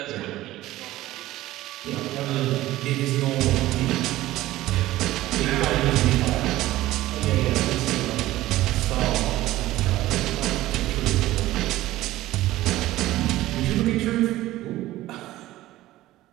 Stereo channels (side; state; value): left; quieter; 16.0 dB